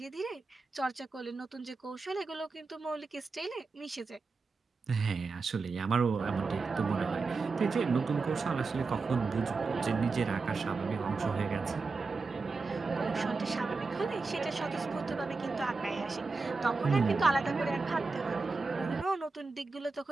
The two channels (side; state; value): left; quieter; 4.1 dB